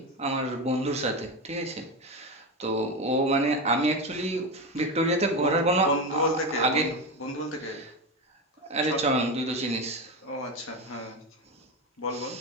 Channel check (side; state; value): both; normal; correlation 0.17